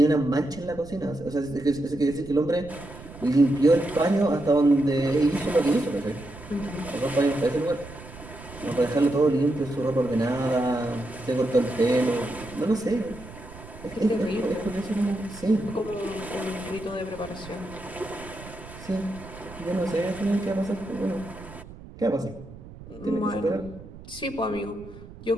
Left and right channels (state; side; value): noise; right; rumble, 16 dB below the sound